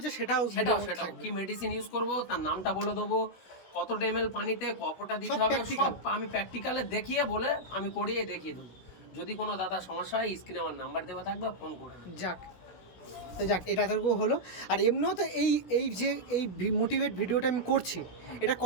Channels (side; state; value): right; late; 16 ms